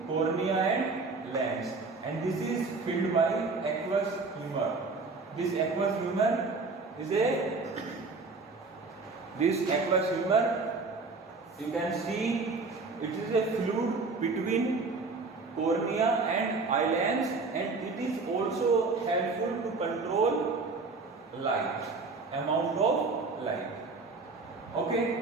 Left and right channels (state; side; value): quieter; left; 4.0 dB